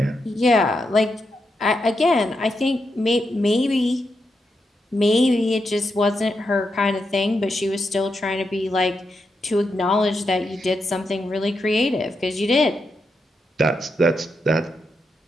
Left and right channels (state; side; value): normal; both; correlation 0.84